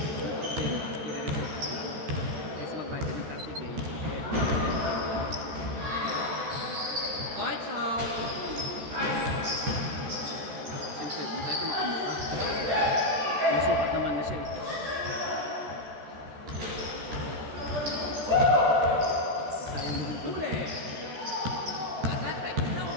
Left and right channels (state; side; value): late; left; 13 ms